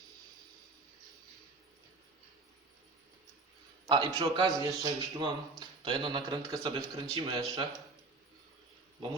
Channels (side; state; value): left; quieter; 3.6 dB